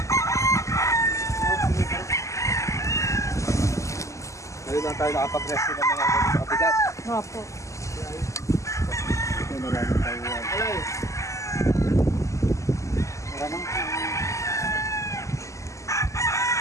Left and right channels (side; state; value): right; late; 0.15 ms